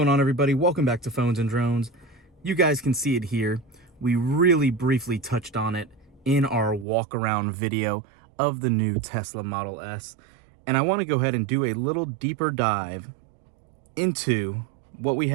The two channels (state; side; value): drops out; left; at 6.9 s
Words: on, everybody? Welcome back to Phones and Drones. You guys can see it here. We really briefly touched on it in our walk around video of the new Tesla Model S. And I want to go ahead and do a little deeper dive into what we